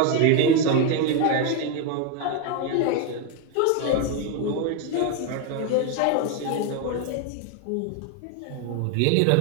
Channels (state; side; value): different; both; correlation 0.02